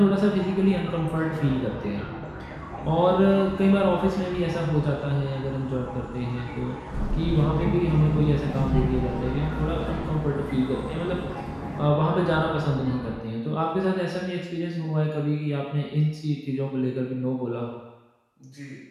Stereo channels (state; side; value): identical; both; correlation 1.00